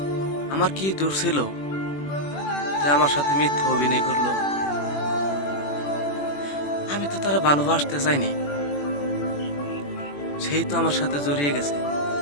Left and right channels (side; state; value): right; late; 21 ms